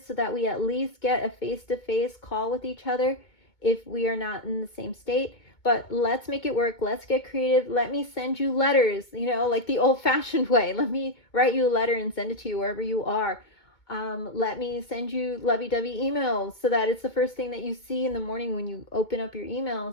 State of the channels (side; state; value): right; late; 2.2 ms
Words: so that we at least get a face-to-face call with each other if we are not in the same state. But let's make it work. Let's get creative. Let me send you letters, like the old-fashioned way. Let me write you a letter and send it to you wherever you are. Let me send you lovey-dovey emails so that it's the first thing that you see in the morning when you open up your